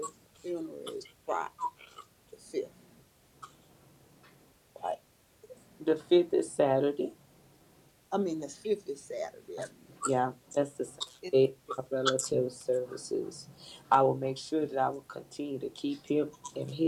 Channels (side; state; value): both; identical; correlation 1.00